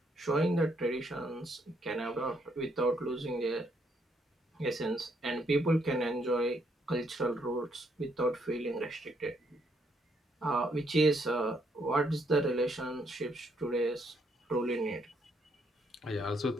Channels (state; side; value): normal; both; correlation 0.73